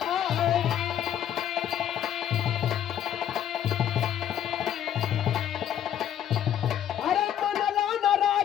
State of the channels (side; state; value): right; quieter; 10.3 dB